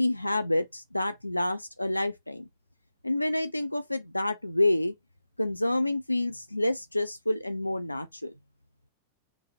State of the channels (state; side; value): inverted; both; correlation -0.96